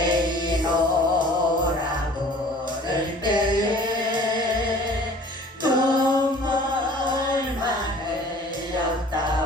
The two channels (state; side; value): normal; both; correlation 0.49